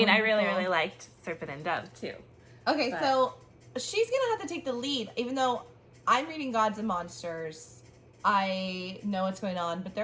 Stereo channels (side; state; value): both; identical; correlation 1.00